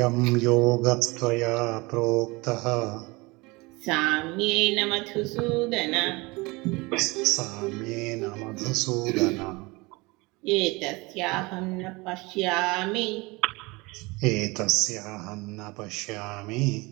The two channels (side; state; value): left; quieter; 24.6 dB